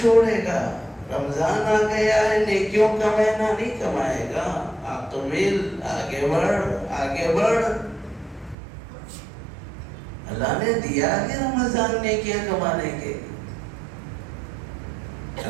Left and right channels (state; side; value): drops out; left; at 8.6 s